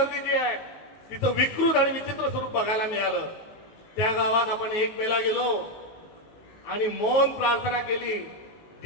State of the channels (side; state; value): right; late; 19 ms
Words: जी आहे तिथं विकृत आणि विचित्र स्वरूप बघायला मिळालं. त्या गावात आपण 1 मेला गेलो आणि मौन प्रार्थना केली.